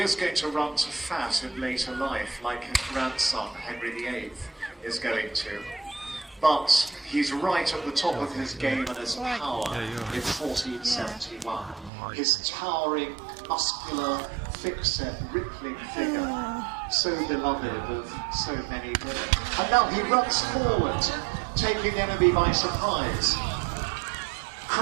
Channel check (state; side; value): drops out; left; at 11.9 s